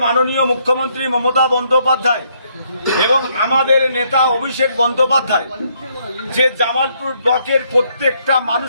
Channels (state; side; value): inverted; both; correlation -0.71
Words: মাননীয় মুখ্যমন্ত্রী মমতা বন্দ্যোপাধ্যায় এবং আমাদের নেতা অভিষেক বন্দ্যোপাধ্যায় যে জামালপুর ব্লকের প্রত্যেকটা